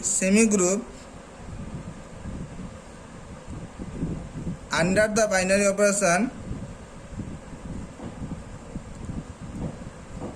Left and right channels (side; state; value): both; identical; correlation 1.00